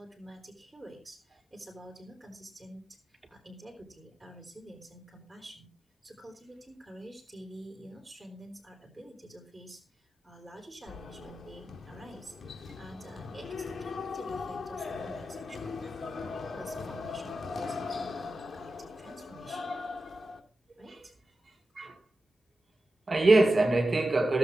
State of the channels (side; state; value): both; normal; correlation 0.92